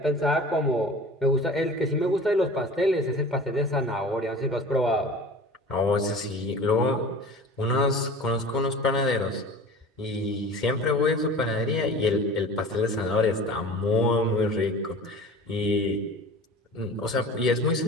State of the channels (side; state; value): both; normal; correlation 0.39